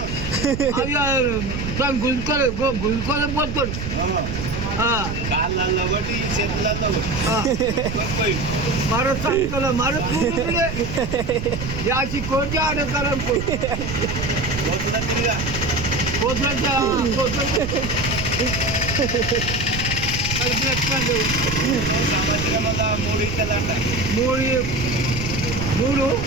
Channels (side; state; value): right; noise; rumble, 6 dB below the sound